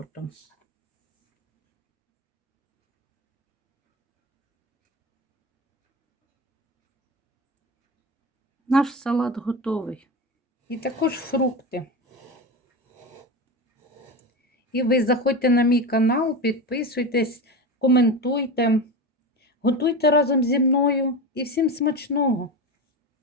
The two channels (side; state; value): both; normal; correlation 0.22